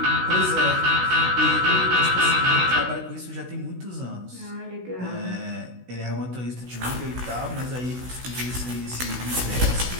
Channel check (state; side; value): late; left; 16 ms